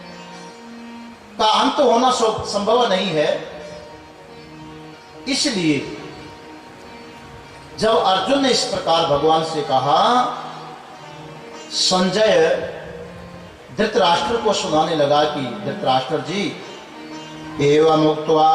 का अंत होना संभव नहीं है। इसलिए जब अर्जुन ने इस प्रकार भगवान से कहा, संजय धृतराष्ट्र को सुनाने लगा कि धृतराष्ट्र जी, एवं उक्त्वा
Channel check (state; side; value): identical; both; correlation 1.00